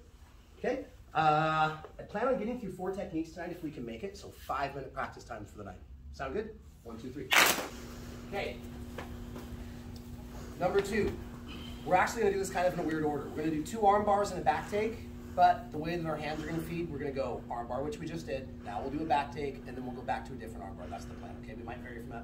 okay? I plan on getting through 4 techniques tonight if we can make it, so 5-minute practice time for the night. Sound good? 1, 2, 3. Okay, number 2. We're actually gonna do this kind of in a weird order. We're gonna do 2 arm bars and a back take, but the way that our hands are gonna feed, we're gonna go arm bar, which we just did. Now we'll do a back take, and then we'll go back to a different arm bar. That's the plan, okay? We might vary from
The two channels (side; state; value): both; identical; correlation 1.00